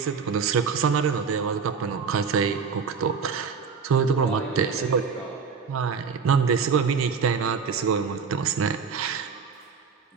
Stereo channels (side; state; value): left; quieter; 5.8 dB